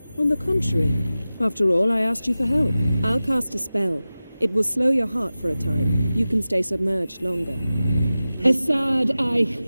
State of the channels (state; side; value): inverted; both; correlation -0.96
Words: On the contrary. After all, I asked you for help. I'll cast a spell. It will slow your heart for a time. You can stay submerged longer. Assad I